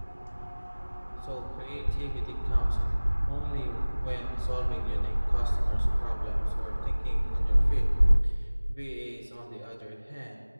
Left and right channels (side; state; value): both; inverted; correlation -1.00